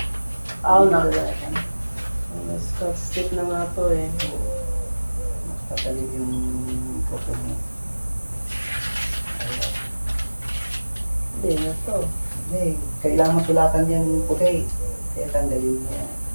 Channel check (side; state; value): both; inverted; correlation -1.00